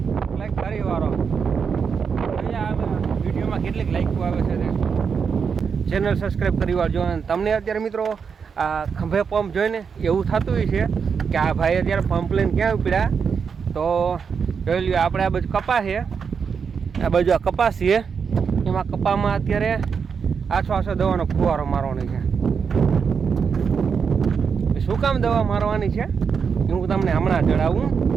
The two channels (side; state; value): left; quieter; 6.2 dB